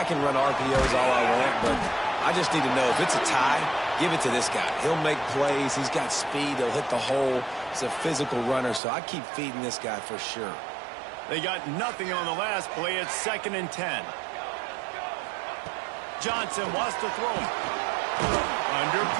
can run RPOs all I want, but I just need to know if it's a tie, give it to this guy. He'll make plays. He's got speed. He'll hit the hole. He's a physical runner, so I keep feeding this guy for sure. They got nothing on the last play. It's 2nd and 10. Johnson wants to throw him. Under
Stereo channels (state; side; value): drops out; left; at 8.8 s